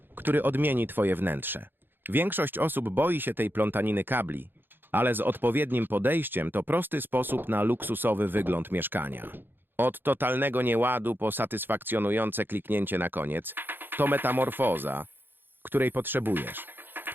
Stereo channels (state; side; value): late; left; 0.098 ms